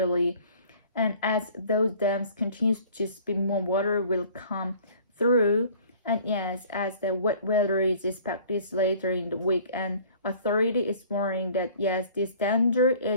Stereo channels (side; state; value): both; inverted; correlation -0.51